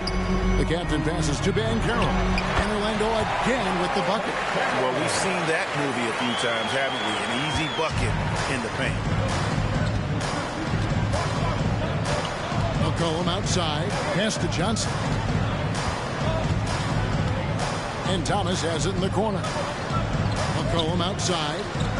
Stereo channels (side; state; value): both; identical; correlation 1.00